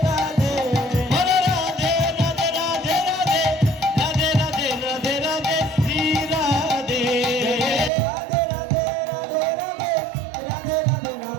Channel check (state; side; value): drops out; left; at 7.9 s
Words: রাধে। বলো রাধে রাধে রাধে রাধে রাধে রাধে রাধে রাধে শ্রী রাধে। রাধে রাধে রাধে রাধে রাধে রাধে